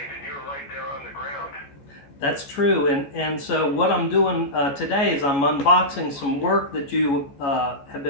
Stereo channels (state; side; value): late; right; 14 ms